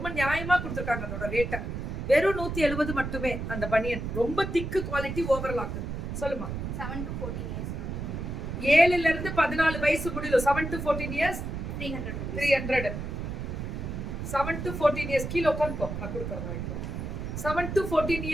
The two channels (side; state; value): right; noise; rumble, 5 dB below the sound